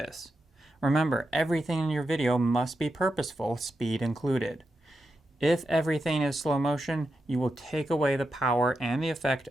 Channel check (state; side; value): normal; both; correlation 0.87